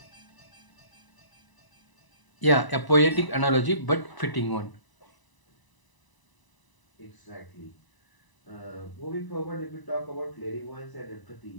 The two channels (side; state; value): right; late; 1.0 ms